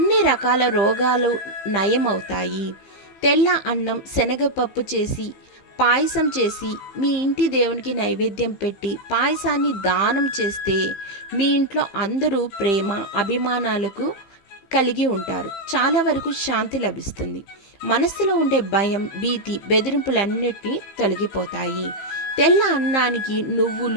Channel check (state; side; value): late; right; 15 ms